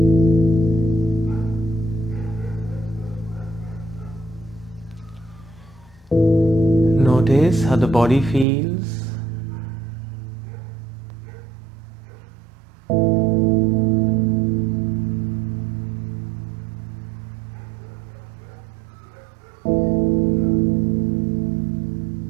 Notice how the body feels.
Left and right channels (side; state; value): left; drops out; at 8.5 s